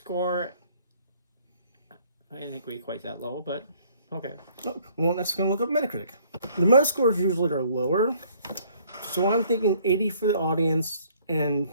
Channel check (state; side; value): inverted; both; correlation -0.61